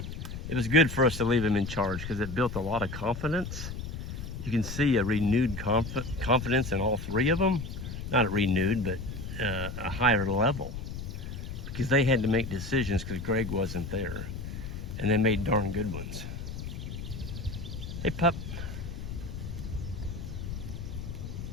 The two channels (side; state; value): left; noise; rumble, 7 dB below the sound